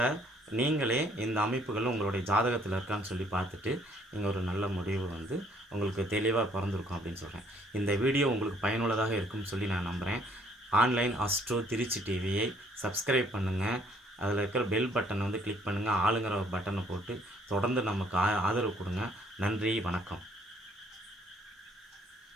நீங்களே இந்த அமைப்புகளும் உங்களுடைய ஜாதகத்தில் இருக்கான்னு சொல்லி பார்த்துட்டு நீங்கள் ஒரு நல்ல முடிவு உங்களுக்கு தெளிவாக பிறந்திருக்கும் அப்படின்னு சொல்கிறேன். இந்த வீடியோ உங்களுக்கு பயனுள்ளதாக இருக்கும்னு சொல்லி நான் நம்புகிறேன். ஆன்லைன் அஸ்ட்ரோ திருச்சி டிவியை சப்ஸ்கிரைப் பண்ணுங்கள். அதில் இருக்கிற பெல் பட்டனை கிளிக் பண்ணுங்கள். ஆளுங்கிற பட்டனை போட்டு தொடர்ந்து நமக்கு ஆதரவு கொடுங்க. நன்றி, வணக்கம்.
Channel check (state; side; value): normal; both; correlation 0.64